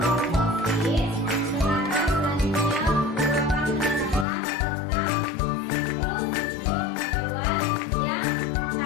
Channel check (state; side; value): drops out; right; at 4.2 s